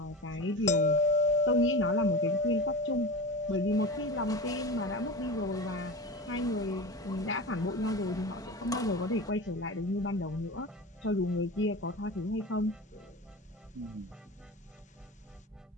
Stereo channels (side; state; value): both; normal; correlation 0.29